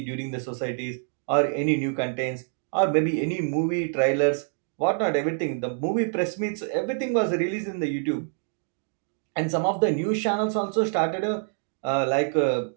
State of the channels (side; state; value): left; silent; 61 dB below the other